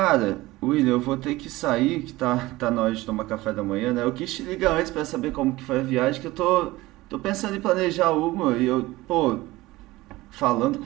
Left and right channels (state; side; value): quieter; left; 19.0 dB